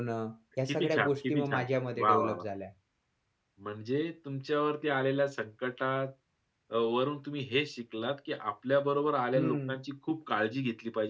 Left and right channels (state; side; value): identical; both; correlation 1.00